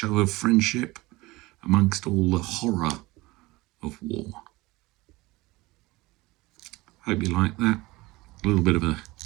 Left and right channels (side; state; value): left; quieter; 21.1 dB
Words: of friendship amongst all the horror of war. Hope you like that. A little bit of a